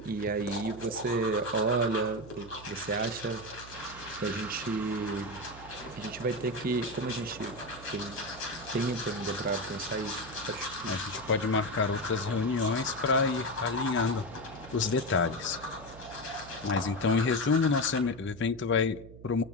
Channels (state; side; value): noise; right; hum, 17 dB below the sound